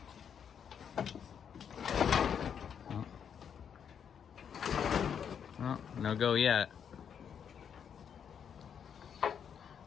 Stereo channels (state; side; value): quieter; right; 7.8 dB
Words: Oh, no go yet.